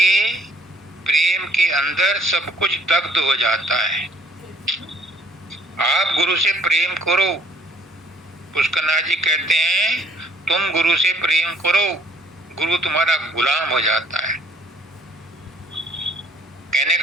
प्रेम के अंदर सब कुछ दग्ध हो जाता है। आप गुरु से प्रेम करो। पुष्करनाथ जी कहते हैं तुम गुरु से प्रेम करो, गुरु तुम्हारा गुलाम हो जाता है। कहने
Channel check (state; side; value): normal; both; correlation 0.60